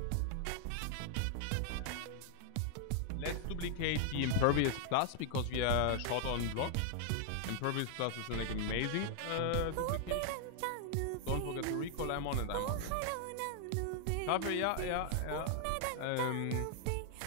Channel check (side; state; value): both; different; correlation 0.00